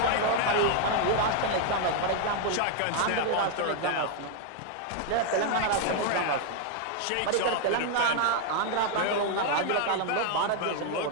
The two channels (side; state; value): both; different; correlation 0.00